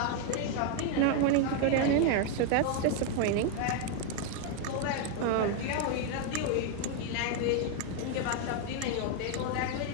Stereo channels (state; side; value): different; both; correlation 0.01